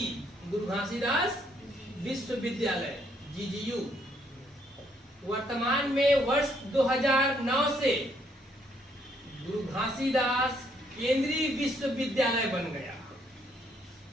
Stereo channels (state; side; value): normal; both; correlation 0.70